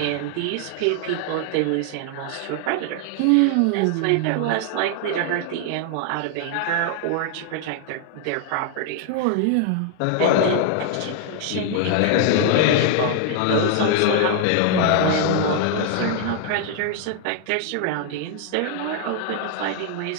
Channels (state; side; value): different; both; correlation 0.00